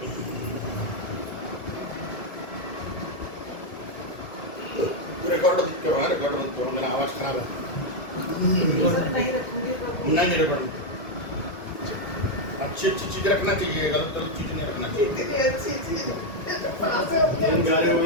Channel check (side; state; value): right; late; 2.1 ms